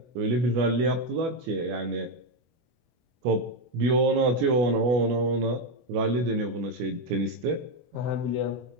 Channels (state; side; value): late; left; 24 ms